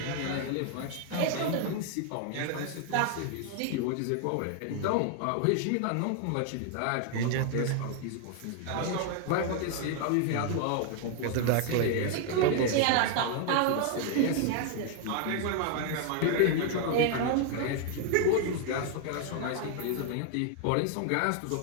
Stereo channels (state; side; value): different; both; correlation 0.00